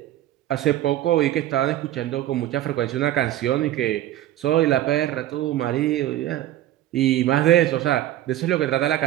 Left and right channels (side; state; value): left; quieter; 13.6 dB